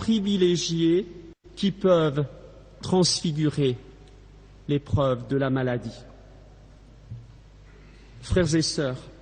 qui peuvent transfigurer l'épreuve de la maladie. Frères et sœurs,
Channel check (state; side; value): identical; both; correlation 1.00